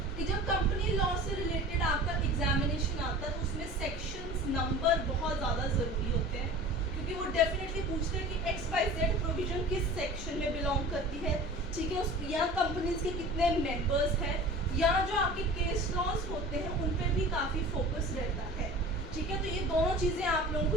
कि जब कंपनी लॉ से रिलेटेड आपका एग्जामिनेशन आता है तो उसमें सेक्शंस नंबर बहुत ज़्यादा ज़रूरी होते हैं, क्योंकि वो डेफिनेटली पूछते हैं कि XYZ प्रोविजन किस सेक्शन में बिलोंग करती है. ठीक है, उस या कंपनीज के कितने मेंबर्स हैं, या जो आपके केस लॉज होते हैं उन पर भी काफ़ी फोकस रहता है. ठीक है, तो ये दोनों चीज़ें आप लोगों को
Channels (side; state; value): both; normal; correlation 0.40